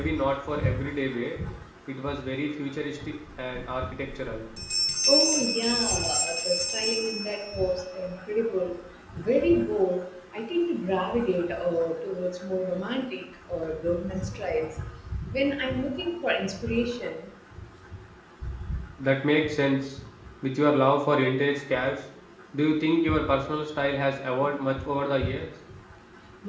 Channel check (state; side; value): identical; both; correlation 1.00